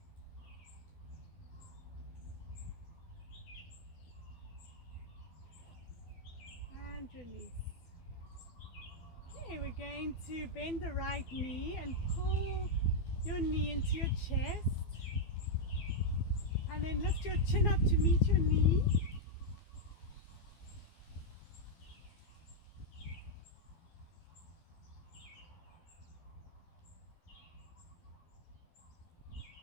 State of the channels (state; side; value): late; right; 12 ms